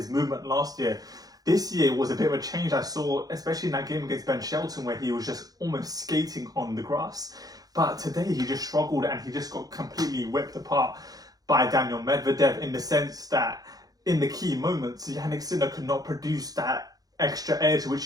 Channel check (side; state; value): left; late; 0.18 ms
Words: movement last year. This year was a bit of a change I saw, especially in that game against Ben Shelton, where he was just almost skating on the grass. But today he just struggled, and he just got completely whipped apart by Daniil Medvedev, in the sense that in the key moments, Jannik Sinner could not produce that extra edge which